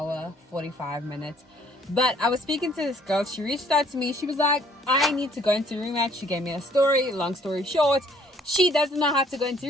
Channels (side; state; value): both; normal; correlation 0.61